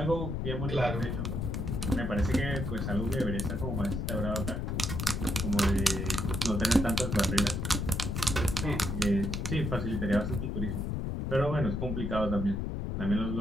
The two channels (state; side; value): noise; left; rumble, 1 dB below the sound